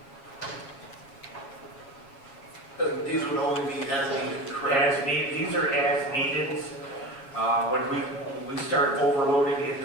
These would only be as needed, correct? As needed, these are as needed. When we start overloading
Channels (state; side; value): late; right; 7.3 ms